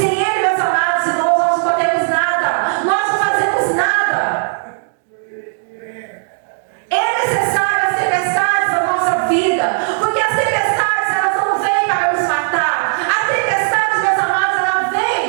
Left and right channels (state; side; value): silent; left; digital silence